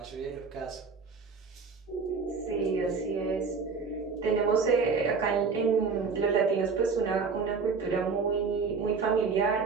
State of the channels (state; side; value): quieter; left; 5.0 dB